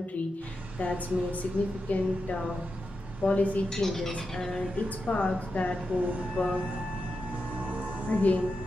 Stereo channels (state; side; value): normal; both; correlation 0.88